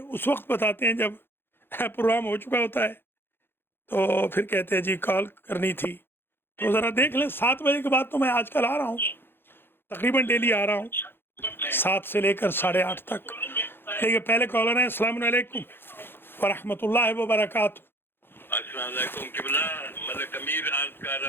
وقت بتاتے ہیں جب پروگرام ہو چکا ہوتا ہے، تو پھر کہتے ہیں جی کال کرنی تھی. تو ذرا دیکھ لیں. 7 بجے کے بعد تو میں آج کل آ رہا ہوں، تقریباً ڈیلی آ رہا ہوں، 7 سے لے کر 8:30 تک. لیکن پہلے کالر ہیں. السلام علیکم ورحمۃ اللہ وبرکاتہ. السلام علیکم قبلہ، ملک امیر عرض کر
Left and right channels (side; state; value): right; late; 0.10 ms